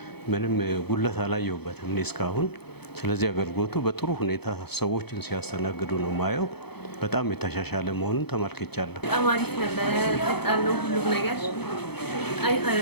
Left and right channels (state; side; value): late; right; 0.97 ms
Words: ምንም ጉለት አላየሁበትም እኔ እስካሁን። ስለዚህ አገልግሎቱ በጥሩ ሁኔታ ሰዎችን ሲያስተናግዱ ነው ማየው። በጣም የተሻሻለ መሆኑን ተመልክቻለሁ። በጣም አሪፍ ነበር። ፈጣን ነው ሁሉም ነገር።